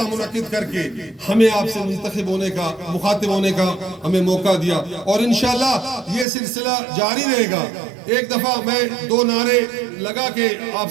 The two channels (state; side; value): drops out; left; at 6.2 s